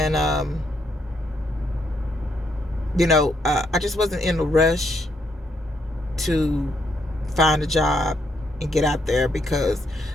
I just wasn't in a rush to find a job and get out there because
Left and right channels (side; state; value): both; normal; correlation 0.75